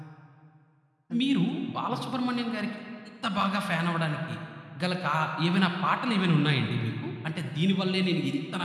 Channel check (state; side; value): identical; both; correlation 1.00